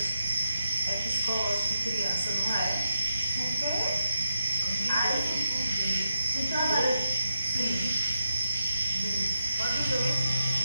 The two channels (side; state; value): both; inverted; correlation -0.83